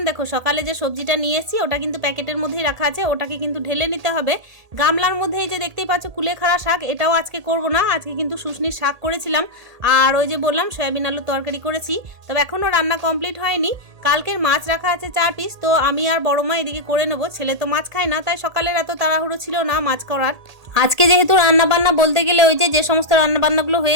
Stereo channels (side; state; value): left; late; 1.8 ms